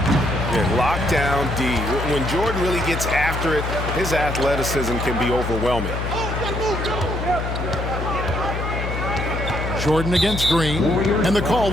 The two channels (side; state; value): left; noise; hum, 4 dB below the sound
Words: Yeah, lockdown D. When Jordan really gets after it, his athleticism can be overwhelming. Jordan against Green, and the call